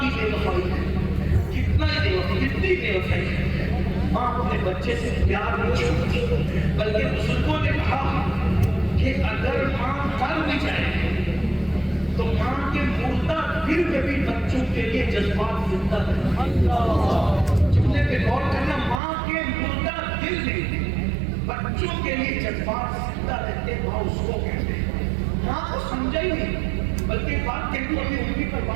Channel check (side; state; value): left; drops out; at 19.0 s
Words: بے وفائی ہے, کتنا ہی بے وفائی, کتنی بے وفائی ہے, ماں اپنے بچے سے پیار نہیں چھوڑتی. بلکہ بزرگوں نے کہا کہ اگر ماں مر بھی جائے تو ماں کے مردہ دل میں بھی بچوں کے لیے جذبات زندہ رہتے. جملے پہ غور کرنا, ماں کے مردہ دل میں بچوں کے لیے جذبات زندہ رہتے. ماں اس کو کہتے ہیں. ماں کو سمجھا ہی نہیں, بلکہ بات کہتی ہوں, اپنی امی پر